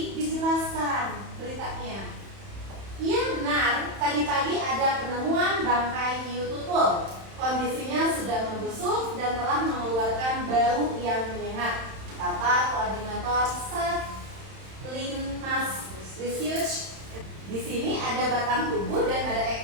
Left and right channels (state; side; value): late; left; 31 ms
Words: dijelaskan beritanya. Iya benar, tadi pagi ada penemuan bangkai hiu tutul. Kondisinya sudah membusuk dan telah mengeluarkan bau yang menyengat, kata koordinator Satlinmas Research. Di sini ada batang tubuh dan ada